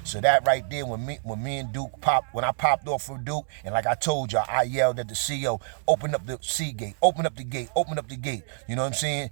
So that right there, when me and Duke when I popped off for Duke, and like I told y'all, I yelled at the CO, open up the C gate, open up the gate, open up the gate. You know what I'm saying?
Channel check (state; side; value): silent; left; 60 dB below the other